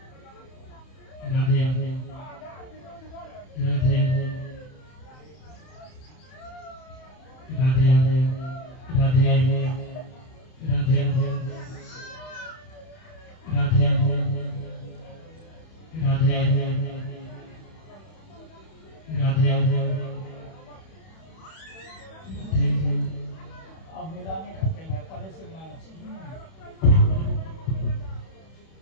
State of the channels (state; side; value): late; right; 31 ms